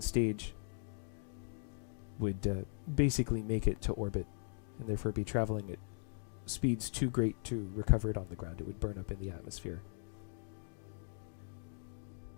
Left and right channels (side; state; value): right; silent; digital silence